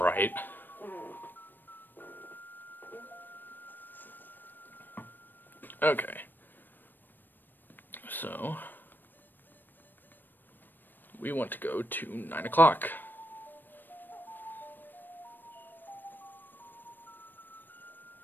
Okay. So, we want to go to 9 o'clock.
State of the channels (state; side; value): late; right; 0.092 ms